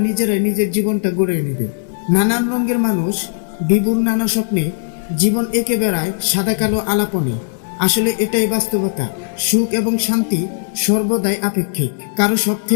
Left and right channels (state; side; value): silent; right; digital silence